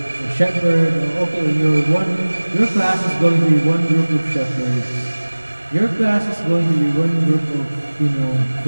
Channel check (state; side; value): inverted; both; correlation -1.00